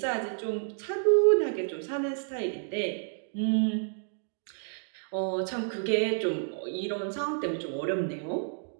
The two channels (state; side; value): silent; left; digital silence